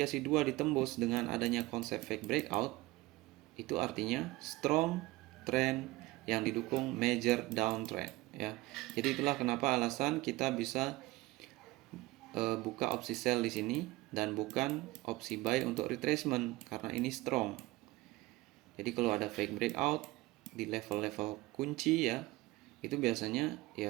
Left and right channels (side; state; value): left; quieter; 20.2 dB